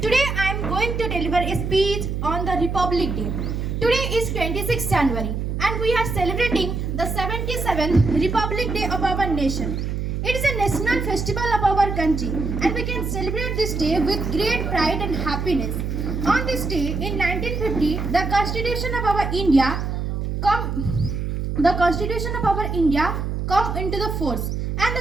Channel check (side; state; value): right; noise; hum, 2 dB below the sound